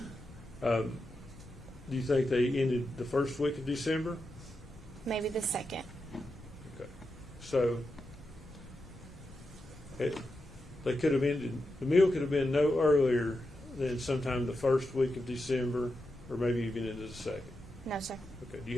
Do you think they ended the first week of December? Maybe the 2nd. Okay. So they could have ended, the meal could have been no earlier than sometime the first week of December, or maybe even into the 2nd. No, sir. Okay. Do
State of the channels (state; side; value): noise; left; rumble, 19 dB below the sound